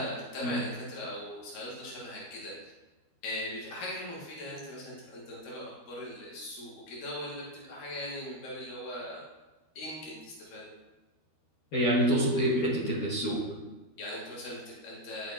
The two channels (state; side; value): late; right; 12 ms